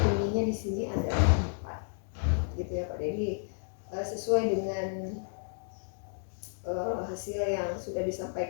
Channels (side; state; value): right; silent; digital silence